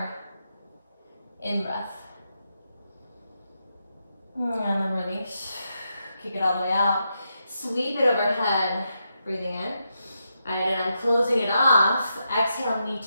in-breath. And then release. Kick it all the way out. Sweep it overhead. Breathing in. All right, and I'm closing it off. Exhale, knee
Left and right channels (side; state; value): both; inverted; correlation -0.84